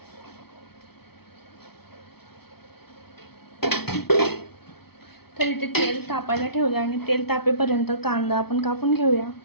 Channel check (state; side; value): late; right; 0.96 ms